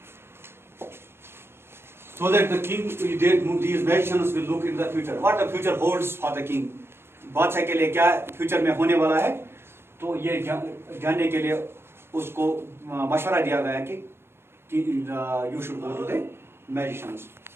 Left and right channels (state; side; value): late; left; 0.12 ms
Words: so that the king, these magicians will look into the future. What the future holds for the king. बादशाह के लिए क्या future में होने वाला है, तो ये जानने के लिए उसको मशवरा दिया गया कि you should go to the magicians.